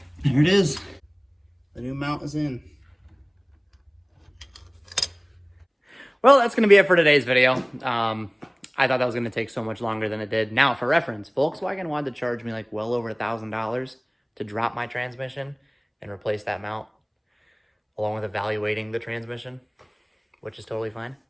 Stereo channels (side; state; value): both; identical; correlation 1.00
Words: there it is. The new mount is in. Well, that's going to be it for today's video. I thought that was going to take so much longer than it did. Now, for reference, Volkswagen wanted to charge me like well over $1,000 to drop my transmission and replace that mount, along with evaluating the transmission, which is totally fine.